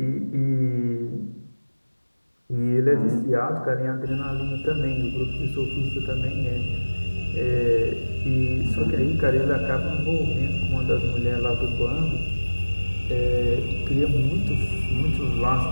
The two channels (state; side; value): inverted; both; correlation -1.00